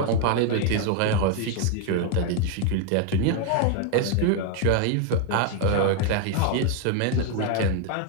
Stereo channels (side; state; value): both; different; correlation 0.01